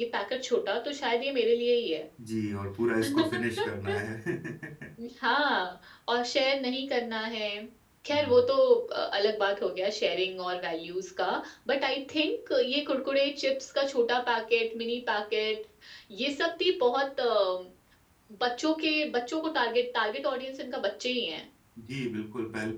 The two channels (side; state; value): both; identical; correlation 1.00